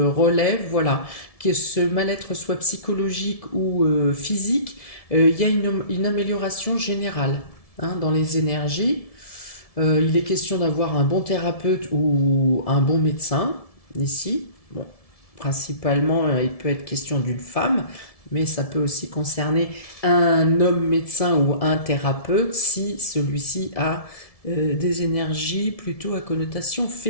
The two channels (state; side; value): late; right; 1.7 ms